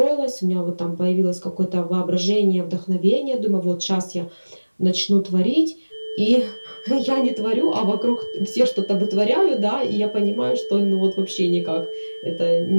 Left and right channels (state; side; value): inverted; both; correlation -1.00